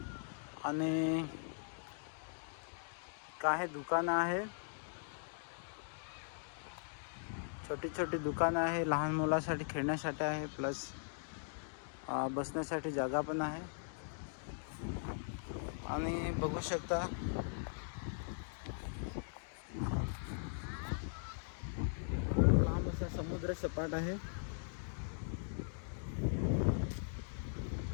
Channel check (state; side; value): silent; right; digital silence